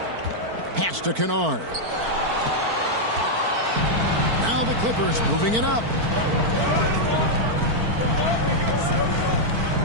Pass to Kennard. Now the Clippers moving it up.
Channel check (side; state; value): left; late; 4.5 ms